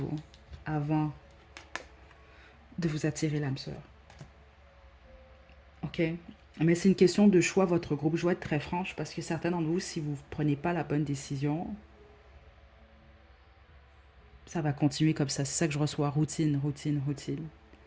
avant de vous attirer l'âme sœur. OK? Mais c'est une question de choix, votre groupe. Je dois être très franche parce que certains d'entre vous, si vous ne prenez pas la bonne décision, ça va continuer comme ça. C'est ça que je reçois. Routine, routine, routine.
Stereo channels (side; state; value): both; identical; correlation 1.00